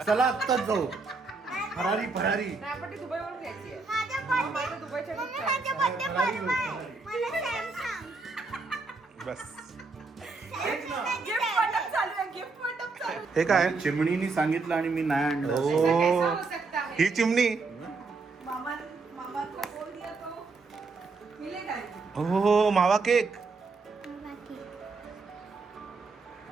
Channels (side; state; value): left; quieter; 4.1 dB